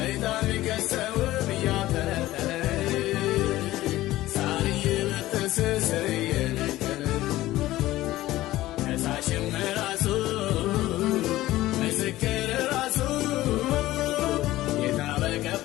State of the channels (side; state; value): right; quieter; 16.2 dB